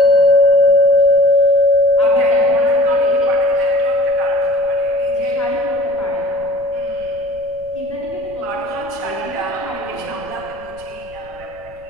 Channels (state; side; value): noise; right; rumble, 23 dB below the sound